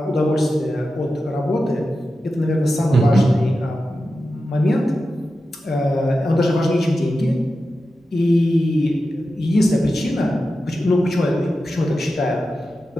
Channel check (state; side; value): normal; both; correlation 0.92